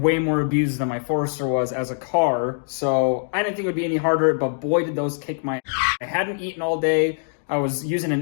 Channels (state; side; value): silent; right; digital silence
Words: more abused than my Forester was as a car. So I didn't think it would be any harder, but boy, did those kick my ass. I hadn't eaten all day. I was using